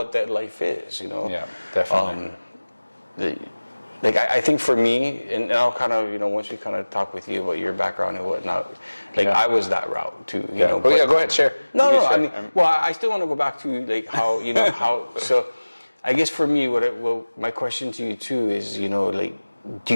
that life is, Yeah, definitely. I think for me, and I'll kind of, once we kind of talk with you about your background and whatnot, I was that route too, go ahead, share. No, I mean, I still want to go back to like how, so I guess for me, my question to you too is, do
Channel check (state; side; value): inverted; both; correlation -1.00